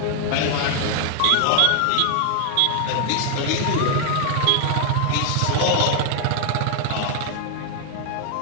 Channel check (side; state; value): both; different; correlation 0.01